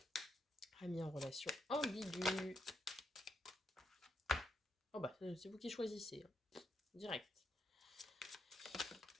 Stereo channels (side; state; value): both; normal; correlation 0.80